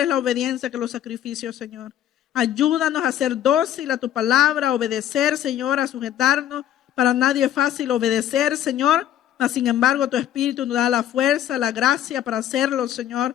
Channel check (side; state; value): right; quieter; 11.2 dB